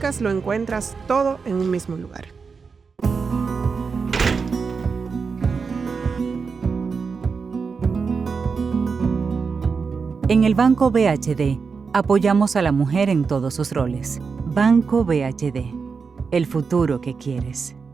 lo encuentras todo en un mismo lugar. En el Banco BHD, apoyamos a la mujer en todos sus roles. Banco BHD, el futuro que quieres.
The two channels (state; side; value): quieter; left; 5.2 dB